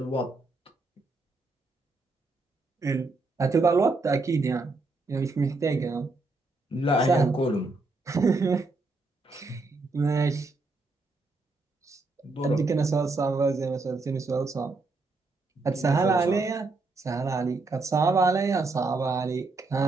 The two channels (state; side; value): quieter; left; 3.5 dB